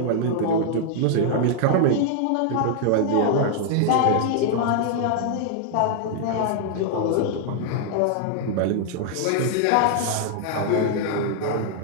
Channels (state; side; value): different; both; correlation 0.00